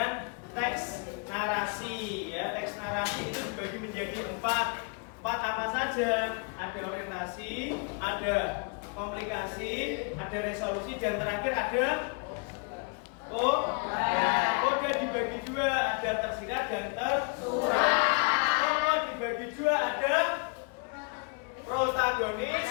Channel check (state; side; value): quieter; right; 36.7 dB